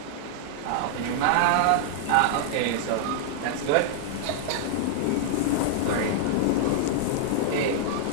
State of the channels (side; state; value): both; different; correlation -0.01